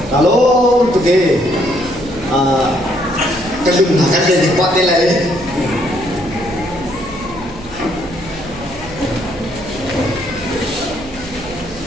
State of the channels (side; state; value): right; noise; hum, 16 dB below the sound